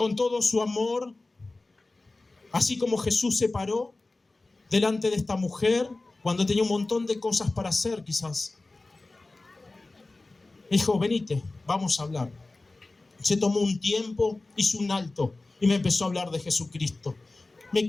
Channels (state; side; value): quieter; right; 3.2 dB